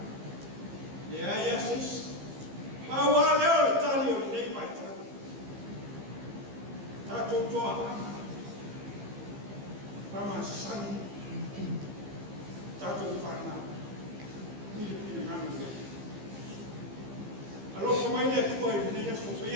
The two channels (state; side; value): late; left; 15 ms